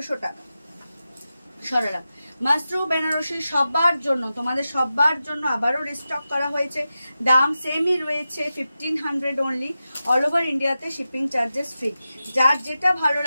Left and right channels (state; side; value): inverted; both; correlation -0.92